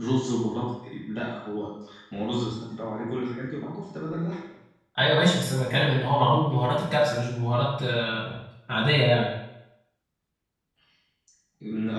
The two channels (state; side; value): identical; both; correlation 1.00